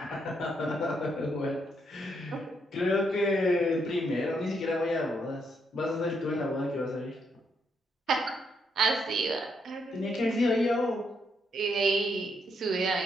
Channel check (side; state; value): both; normal; correlation 0.76